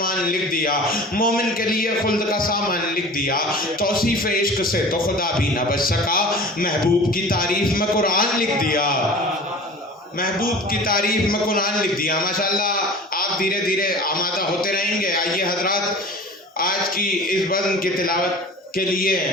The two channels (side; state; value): both; normal; correlation 0.40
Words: لکھ دیا، مومن کے لیے خلد کا سامان لکھ دیا۔ توصیف عشق سے تو خدا بھی نہ بچ سکا، محبوب کی تعریف میں قرآن لکھ دیا، محبوب کی تعریف میں قرآن لکھ دیا۔ ماشاءاللہ آپ دھیرے دھیرے آمادہ ہوتے رہیں گے۔ آئیے حضرات، آج کی اس بزم کی تلاوت کے لیے